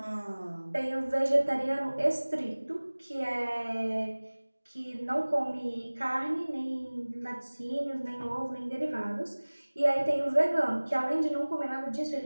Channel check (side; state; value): both; inverted; correlation -1.00